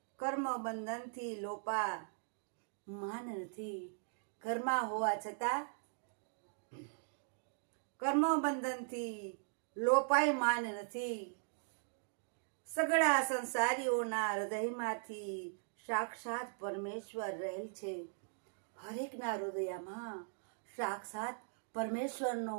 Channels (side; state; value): left; silent; digital silence